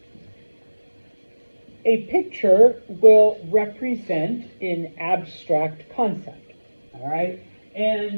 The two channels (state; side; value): inverted; both; correlation -1.00